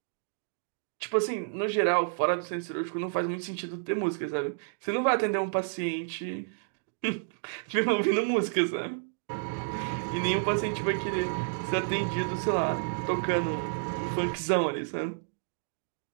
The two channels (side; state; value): left; silent; digital silence